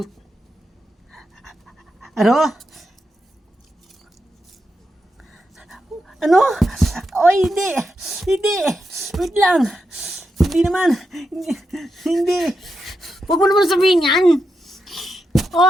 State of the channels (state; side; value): normal; both; correlation 0.86